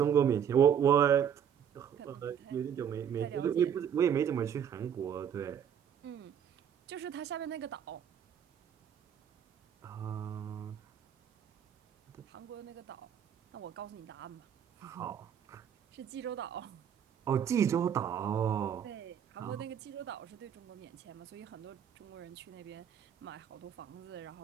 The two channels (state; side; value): quieter; left; 8.5 dB